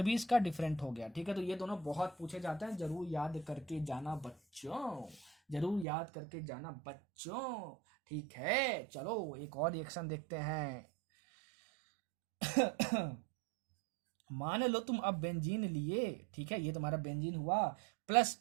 भी इसका डिफरेंट हो गया। ठीक है, तो ये दोनों बहुत पूछे जाते हैं, जरूर याद करके जाना बच्चों, जरूर याद करके जाना बच्चों। ठीक है, चलो एक और रिएक्शन देखते हैं। मान लो तुम अब बेंजीन लिए, ठीक है, ये तुम्हारा बेंजीन हुआ, प्लस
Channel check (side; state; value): left; drops out; at 5.9 s